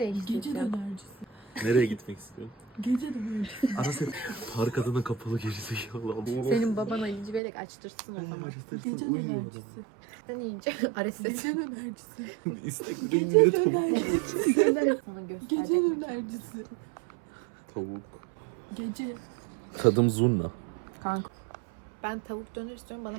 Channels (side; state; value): left; drops out; at 7.4 s